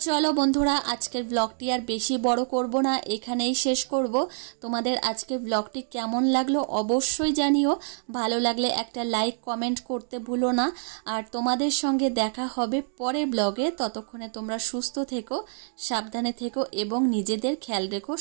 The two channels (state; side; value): silent; left; digital silence